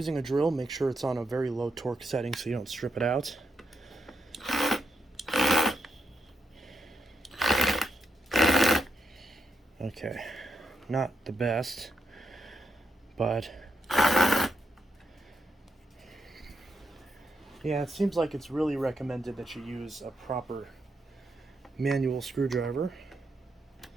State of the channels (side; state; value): both; normal; correlation 0.82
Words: a drill, make sure it's on a very low torque setting so you don't strip it out. Okay, not the best, but yeah, it seems like it's really recommended that you use a proper manual screwdriver.